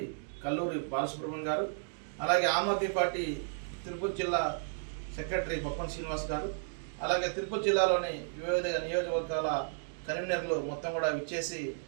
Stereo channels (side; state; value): left; silent; digital silence